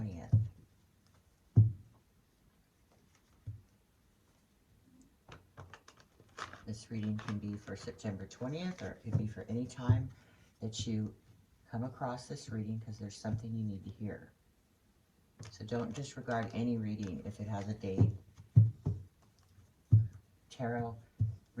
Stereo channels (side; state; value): both; identical; correlation 1.00